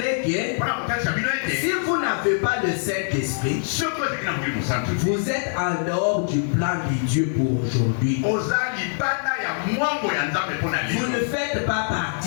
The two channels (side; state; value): right; silent; 63 dB below the other